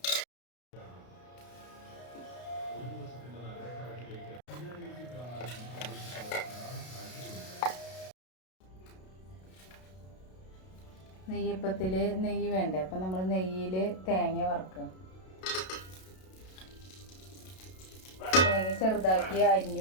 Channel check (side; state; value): right; late; 32 ms